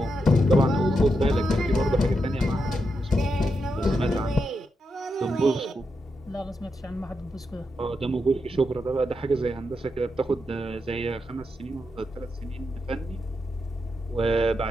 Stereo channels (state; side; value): normal; both; correlation 0.85